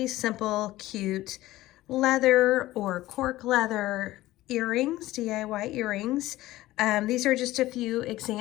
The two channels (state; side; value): quieter; right; 16.6 dB